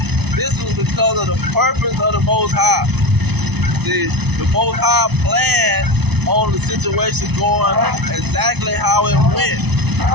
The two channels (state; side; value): late; left; 0.99 ms